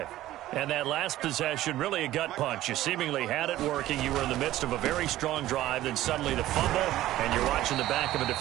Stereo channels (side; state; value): left; quieter; 14.8 dB